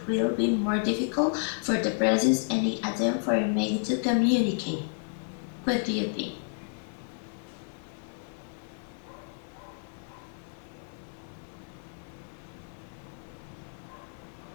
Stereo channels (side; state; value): right; silent; 57 dB below the other